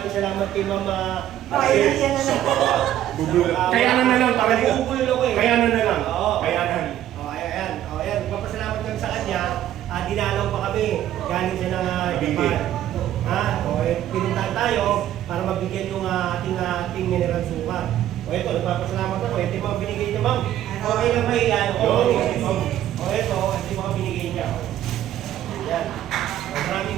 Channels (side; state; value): left; quieter; 12.2 dB